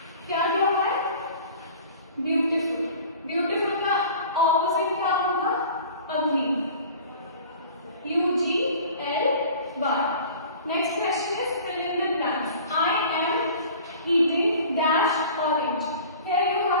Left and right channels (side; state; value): both; inverted; correlation -0.44